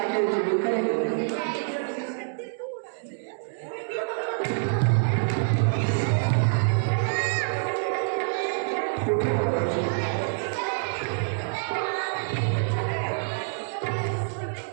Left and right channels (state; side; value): silent; left; digital silence